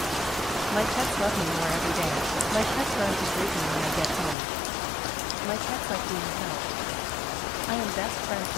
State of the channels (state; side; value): drops out; right; at 4.4 s